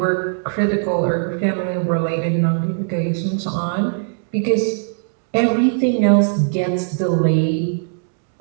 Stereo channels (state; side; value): silent; left; digital silence